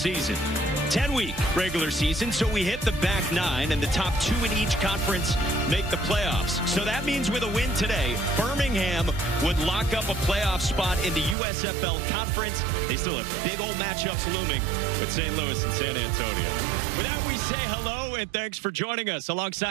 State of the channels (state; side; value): drops out; left; at 11.4 s